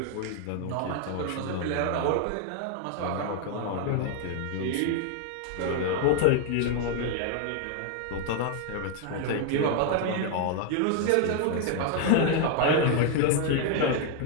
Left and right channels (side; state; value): both; different; correlation 0.00